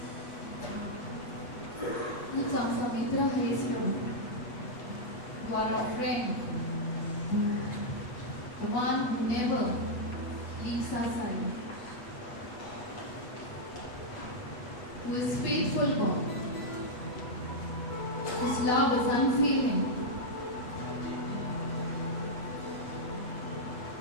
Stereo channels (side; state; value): right; late; 8.6 ms